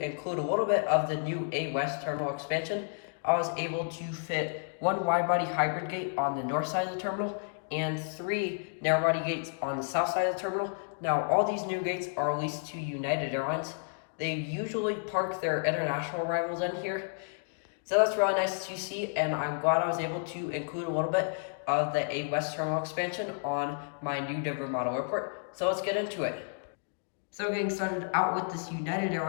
a little bit of the new A West terminal expansion. I was able to fit one wide-body hybrid gate on the north side of the terminal and 3 narrow-body gates on the south side of the terminal. Now, all these new gates are leased to United Airlines. They usually park their international rivals in here, so that's really nice to see, and I'm glad I was able to include a little bit of the A West terminal expansion on my new Denver model airport. So let's get into it. So getting started out with this United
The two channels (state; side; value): silent; right; digital silence